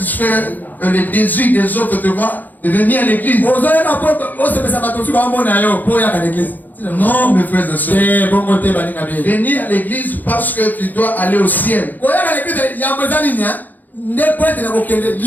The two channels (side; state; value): right; late; 0.084 ms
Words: les désirs des autres, tu vois, de venir à l'église. Non, mes frères et sœurs. Venir à l'église parce que tu dois aller au ciel.